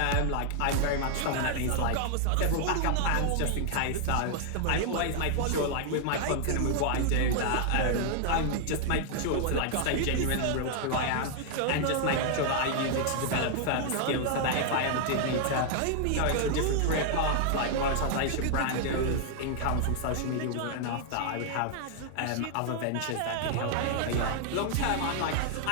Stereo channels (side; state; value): both; different; correlation 0.00